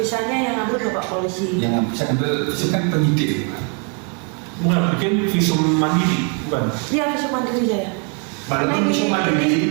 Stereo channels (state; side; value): quieter; left; 38.2 dB